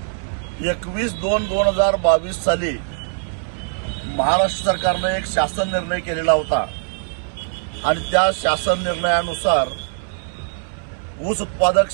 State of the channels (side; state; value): left; silent; 61 dB below the other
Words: 21/2/2022 साली महाराष्ट्र सरकारने एक शासन निर्णय केलेला होता आणि त्या शासन निर्णयानुसार ऊस उत्पादक